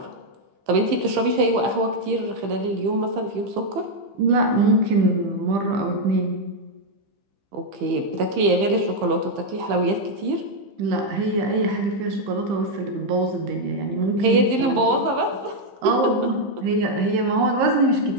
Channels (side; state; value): left; late; 15 ms